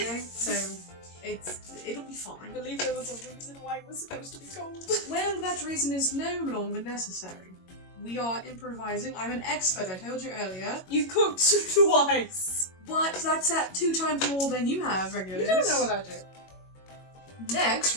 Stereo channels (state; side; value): late; right; 22 ms